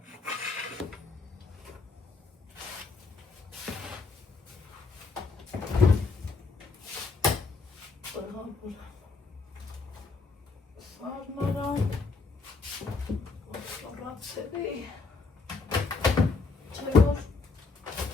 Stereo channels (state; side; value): quieter; right; 4.2 dB